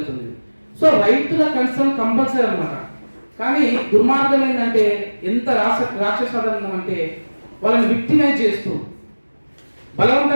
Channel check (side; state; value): both; inverted; correlation -1.00